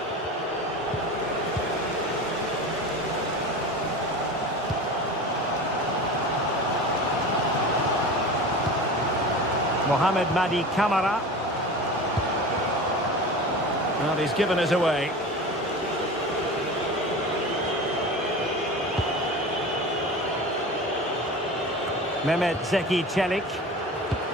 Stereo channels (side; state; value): both; normal; correlation 0.32